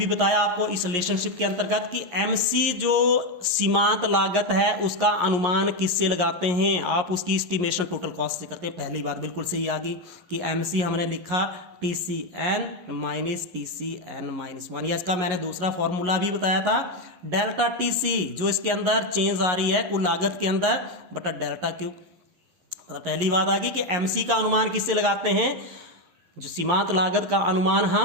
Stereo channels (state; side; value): late; left; 11 ms